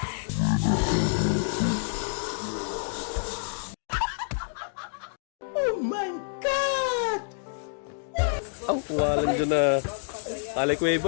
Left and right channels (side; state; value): right; silent; digital silence